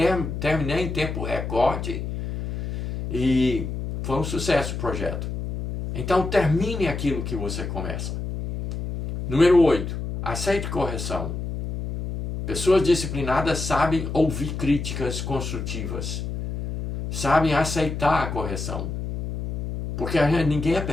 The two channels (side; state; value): left; noise; hum, 5 dB below the sound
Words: tempo recorde e foi um sucesso o projeto. Então termine aquilo que você começa. Número 8. Aceite correção. Pessoas disciplinadas sabem ouvir críticas construtivas. Sabem aceitar a correção. Porque ninguém é